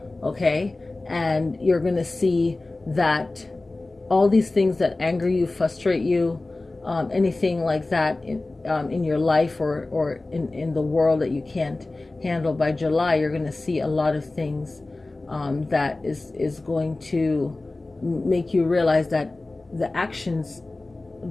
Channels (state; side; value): quieter; right; 3.1 dB